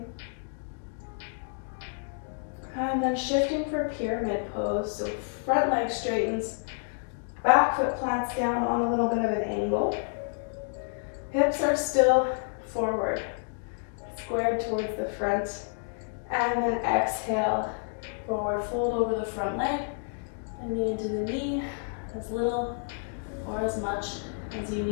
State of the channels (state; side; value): silent; right; digital silence